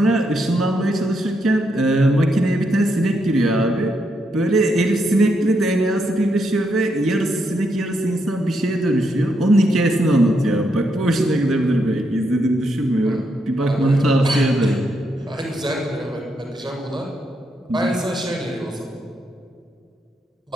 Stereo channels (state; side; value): normal; both; correlation 0.79